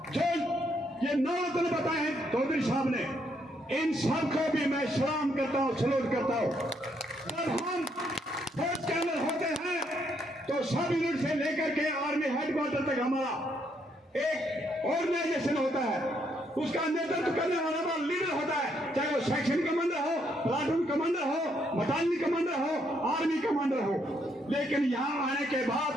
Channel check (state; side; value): normal; both; correlation 0.73